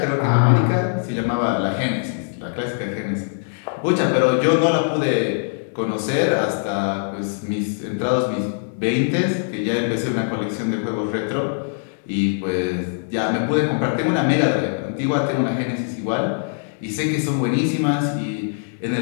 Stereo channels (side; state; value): right; silent; digital silence